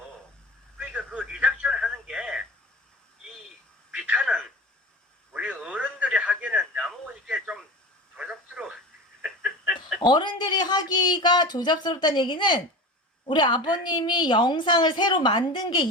그러니까 그 리작션 하는 게 이 비타는 우리 어른들이 하기에는 너무 이게 좀 조잡스러워. 어른들이 하기가 조잡스럽다는 얘기는 우리 아버님이 영상을 새로 만든 게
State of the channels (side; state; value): both; normal; correlation 0.32